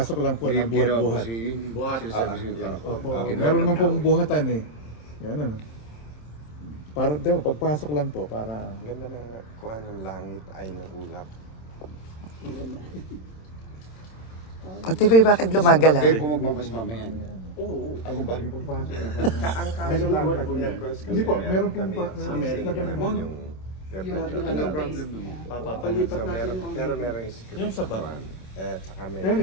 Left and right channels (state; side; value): late; right; 27 ms